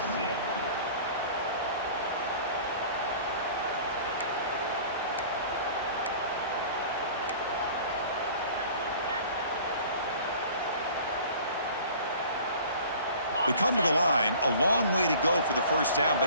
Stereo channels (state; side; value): inverted; both; correlation -0.46